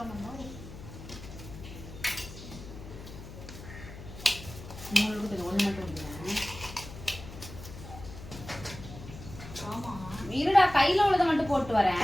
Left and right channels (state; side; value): noise; left; hum, 13 dB below the sound